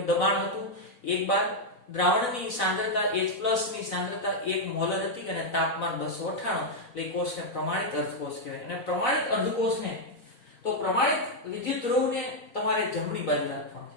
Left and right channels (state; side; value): late; right; 4.0 ms